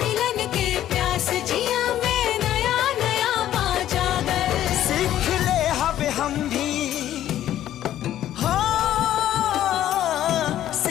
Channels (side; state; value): right; quieter; 12.2 dB